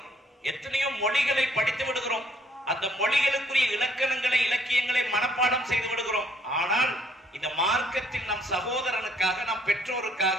எத்தனையோ மொழிகளை படித்து விடுகிறோம், அந்த மொழிகளுக்குரிய இலக்கணங்களை, இலக்கியங்களை மனப்பாடம் செய்து விடுகிறோம். ஆனால் இந்த மார்க்கத்தில் நம் சகோதரனுக்காக, நம் பெற்றோருக்காக,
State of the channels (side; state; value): both; normal; correlation 0.64